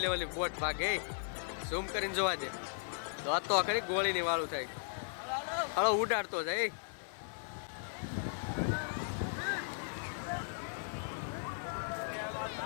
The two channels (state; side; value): silent; right; 53 dB below the other